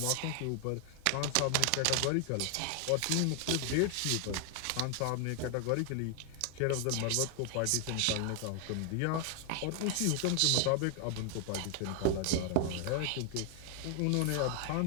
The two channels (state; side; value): different; both; correlation 0.00